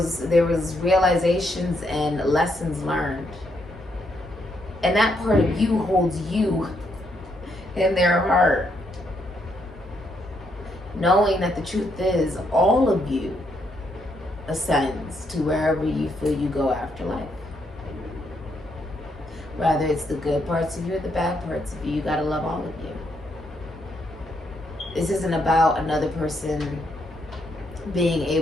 realizations and lessons learned. And that part of you holds you in their heart. Knowing that the truth is all of you ascends to wherever you feel you go after life. Whether it's the good parts of you or the bad parts of you, you gotta love all of you. This isn't about another person being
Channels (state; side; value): normal; both; correlation 0.76